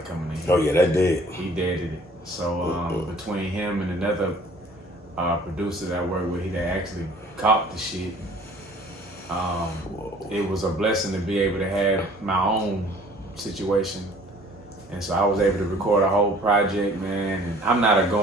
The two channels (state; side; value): normal; both; correlation 0.53